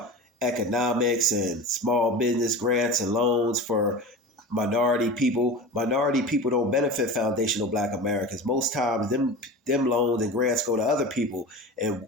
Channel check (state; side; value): normal; both; correlation 0.31